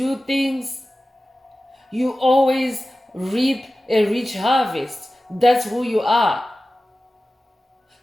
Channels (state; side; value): normal; both; correlation 0.95